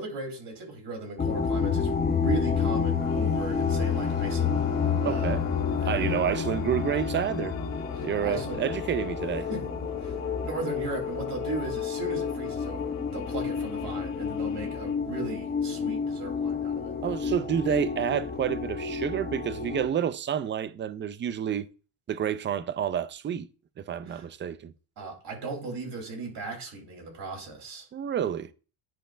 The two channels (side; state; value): both; normal; correlation 0.26